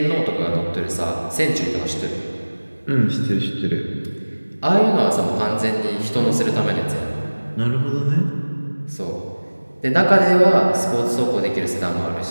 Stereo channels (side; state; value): both; inverted; correlation -1.00